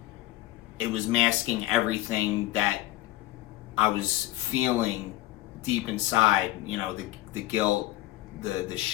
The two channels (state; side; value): quieter; right; 16.5 dB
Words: it was masking everything that I was feeling deep inside, the guilt, the